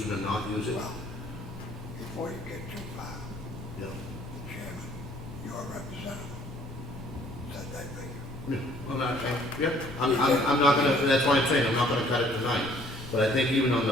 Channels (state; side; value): normal; both; correlation 0.59